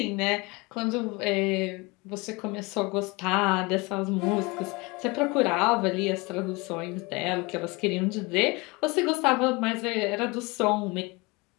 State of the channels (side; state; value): right; quieter; 25.7 dB